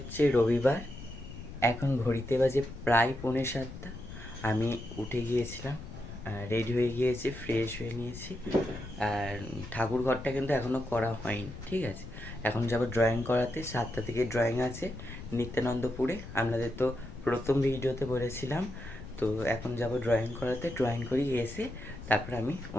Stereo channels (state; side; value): noise; left; rumble, 12 dB below the sound